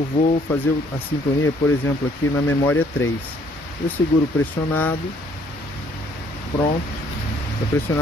vou fazer a sintonia, por exemplo, aqui na memória 3. Eu seguro pressionado, pronto. Está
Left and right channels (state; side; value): normal; both; correlation 0.63